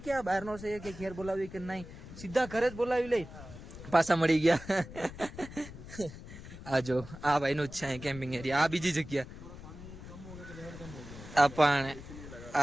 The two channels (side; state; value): left; noise; rumble, 14 dB below the sound